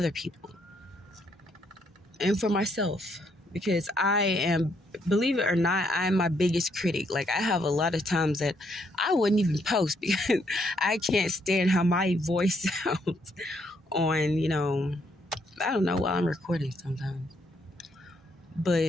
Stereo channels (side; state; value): both; normal; correlation 0.73